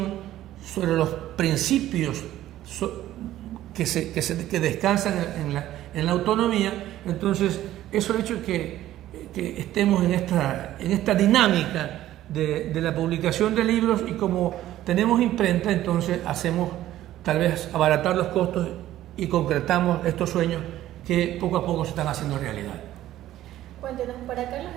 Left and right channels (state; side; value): quieter; left; 13.7 dB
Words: sobre los principios que descansan en la autonomía. Entonces, eso ha hecho que estemos en esta dinámica de la publicación de libros, y como tenemos imprenta, entonces hacemos tal vez abaratar los costos y concretamos estos sueños que poco a poco se están haciendo realidad. Cuéntenos, para Carlos